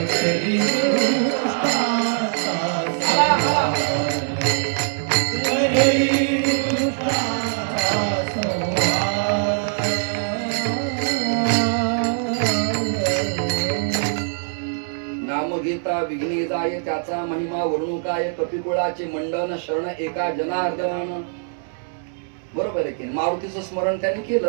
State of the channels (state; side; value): silent; left; digital silence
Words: त्याचा महिमा वर्णू काय? कपिकुळाचे मंडन शरण एका जनार्दन. बरोबर आहे की? मारुतीचं स्मरण त्याने